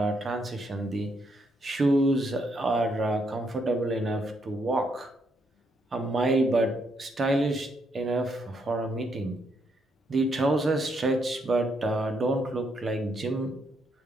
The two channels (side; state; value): both; normal; correlation 0.75